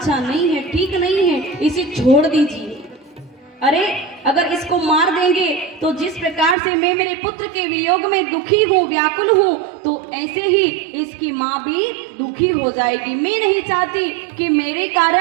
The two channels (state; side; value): drops out; left; at 6.6 s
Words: नहीं है, ठीक नहीं है, इसे छोड़ दीजिए। अरे अगर इसको मार देंगे तो जिस प्रकार से मैं मेरे पुत्र के वियोग में दुखी हूँ, व्याकुल हूँ, तो ऐसे ही इसकी माँ भी दुखी हो जाएगी। मैं नहीं चाहती कि मेरे